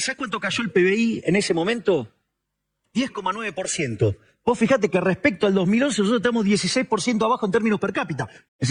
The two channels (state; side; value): identical; both; correlation 1.00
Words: ¿sabés cuánto cayó el PBI en ese momento? 10,9%. Vos fijate que respecto al 2011 nosotros estamos 16% abajo en términos per cápita. Es